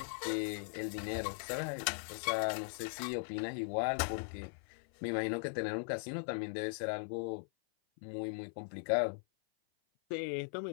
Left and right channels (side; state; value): right; silent; 52 dB below the other